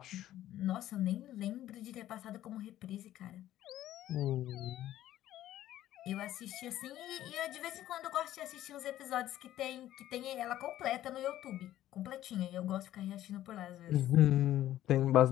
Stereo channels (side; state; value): right; quieter; 13.3 dB